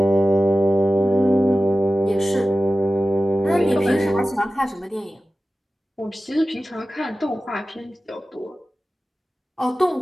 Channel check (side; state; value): both; normal; correlation 0.95